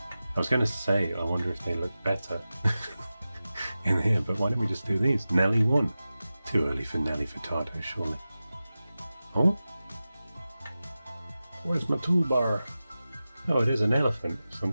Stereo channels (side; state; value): both; inverted; correlation -0.95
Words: I was going to say, I wonder if they look better in here, but why don't we just do these? Nelly 1. Too early for Nelly Furtado, surely. Oh? Where's my toolbar? Oh, it is an elephant of